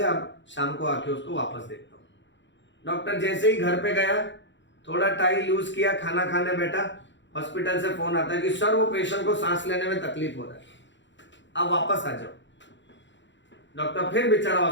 अब शाम को आके उसको वापस देखता हूं। डॉक्टर जैसे ही घर पे गया, थोड़ा टाइम यूज किया, खाना खाने बैठा, हॉस्पिटल से फोन आता है कि सर वो पेशेंट को सांस लेने में तकलीफ हो रहा है, अब वापस आ जाओ। डॉक्टर फिर बेचारा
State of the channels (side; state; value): right; late; 0.53 ms